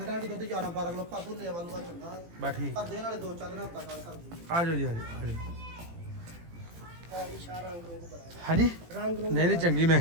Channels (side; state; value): left; late; 18 ms